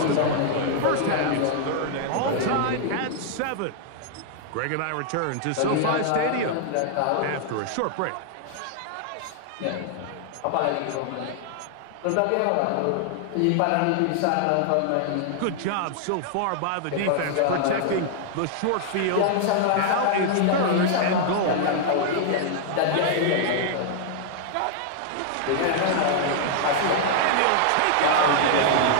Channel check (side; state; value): both; different; correlation -0.01